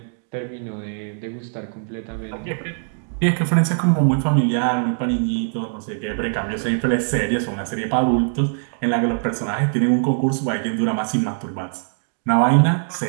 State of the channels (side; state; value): left; silent; digital silence